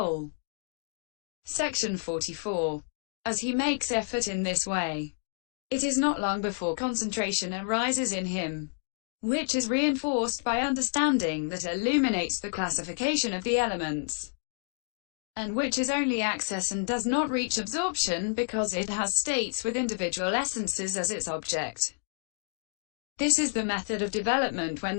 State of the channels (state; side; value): silent; right; digital silence